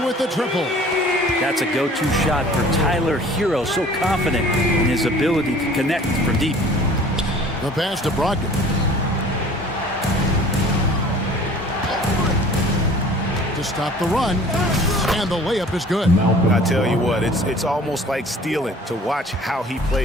with the triple. That's a go-to shot for Tyler Hero, so confident in his ability to connect from deep. The pass to Brogdon. To stop the run, and the layup is good. I tell you what, it's almost like stealing to watch how he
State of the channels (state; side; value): normal; both; correlation 0.49